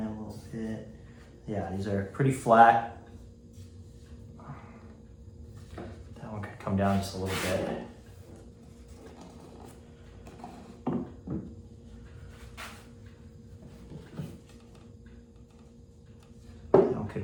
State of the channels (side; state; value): both; identical; correlation 1.00